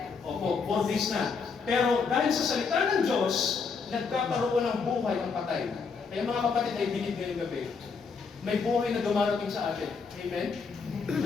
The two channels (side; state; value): right; quieter; 5.2 dB